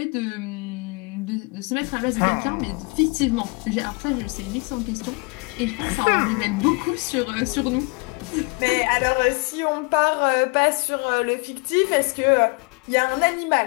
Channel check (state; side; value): quieter; right; 31.3 dB